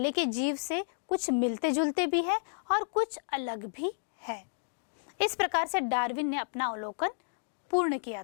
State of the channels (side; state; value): right; silent; digital silence